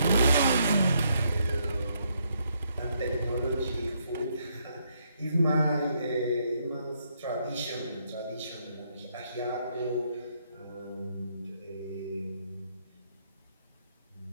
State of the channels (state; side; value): inverted; both; correlation -0.74